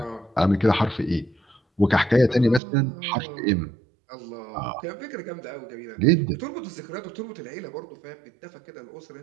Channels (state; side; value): drops out; left; at 2.6 s